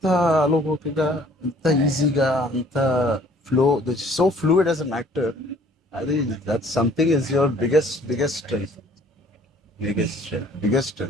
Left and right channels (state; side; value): normal; both; correlation 0.56